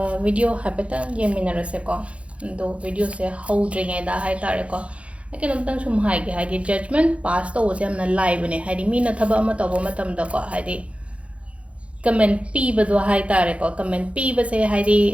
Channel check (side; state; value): left; late; 0.062 ms